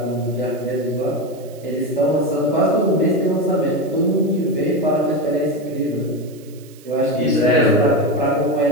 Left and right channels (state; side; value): noise; right; hiss, 25 dB below the sound